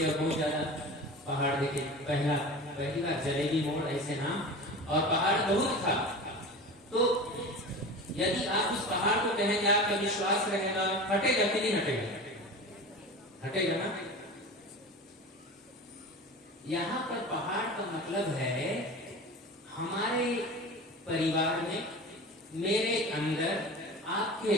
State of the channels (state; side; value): normal; both; correlation 0.33